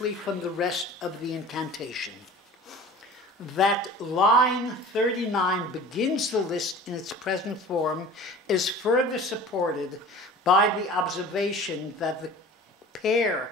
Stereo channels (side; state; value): both; normal; correlation 0.41